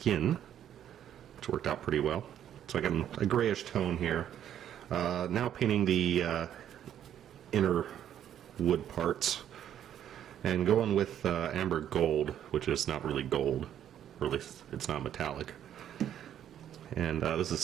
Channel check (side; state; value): left; quieter; 10.3 dB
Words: which worked out pretty well. So I got a grayish tone here. Now painting the inner wood parts, and going with amber gold, which is not really gold, or at least it's not metallic. And this is